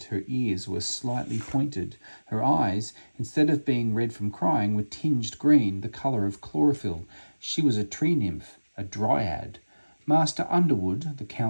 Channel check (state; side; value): inverted; both; correlation -1.00